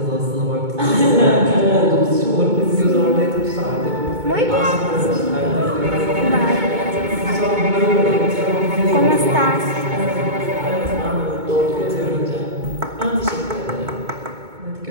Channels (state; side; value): late; left; 2.2 ms